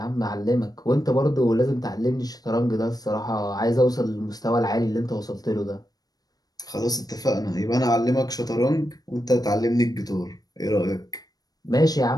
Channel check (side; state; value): right; late; 0.19 ms